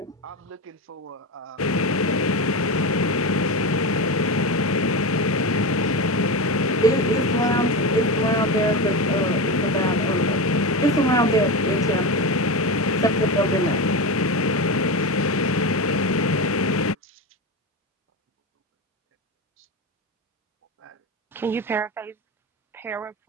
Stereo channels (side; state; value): both; normal; correlation 0.19